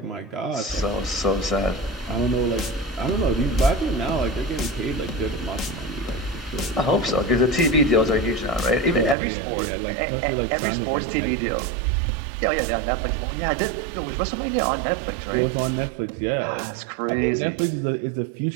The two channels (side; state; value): left; drops out; at 9.2 s